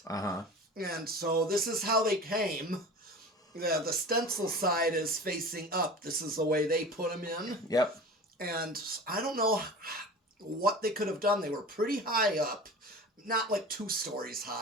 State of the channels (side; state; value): both; normal; correlation 0.36